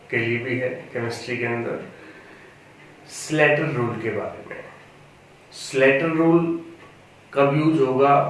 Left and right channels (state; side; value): identical; both; correlation 1.00